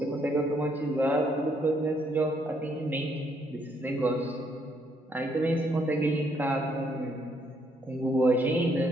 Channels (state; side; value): normal; both; correlation 0.71